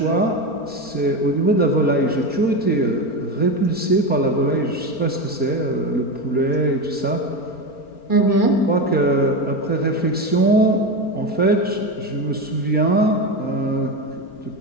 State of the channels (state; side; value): late; right; 4.4 ms